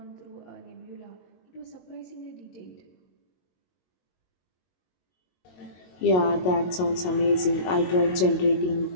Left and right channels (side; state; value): right; late; 22 ms